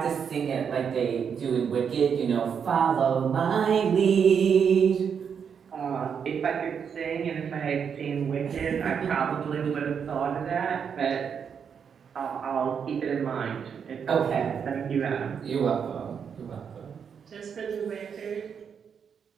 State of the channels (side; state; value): left; quieter; 7.1 dB